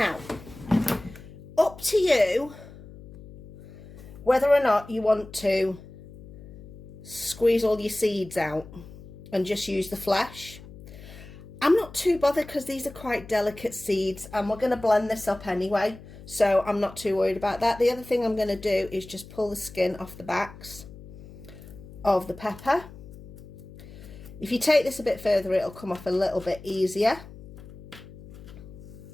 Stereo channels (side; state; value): left; noise; hum, 17 dB below the sound